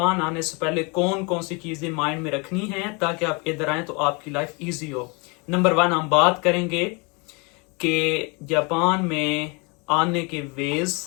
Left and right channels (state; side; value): quieter; right; 30.6 dB